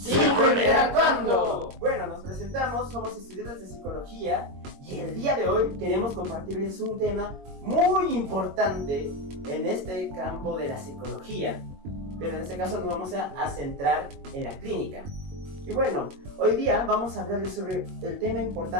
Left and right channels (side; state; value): left; late; 22 ms